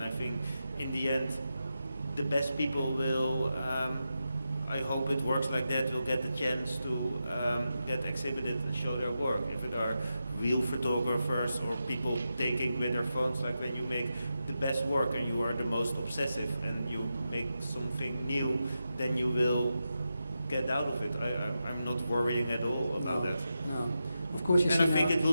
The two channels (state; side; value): inverted; both; correlation -0.89